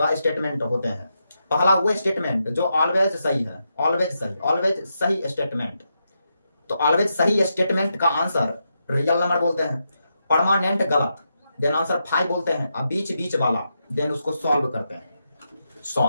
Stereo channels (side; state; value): both; inverted; correlation -0.84